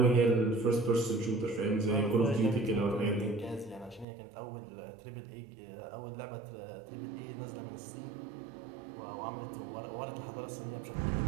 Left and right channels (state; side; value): drops out; left; at 4.0 s